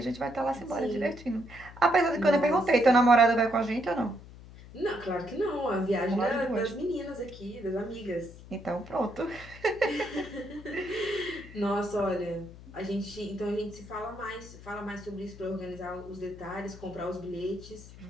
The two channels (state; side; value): noise; left; hum, 17 dB below the sound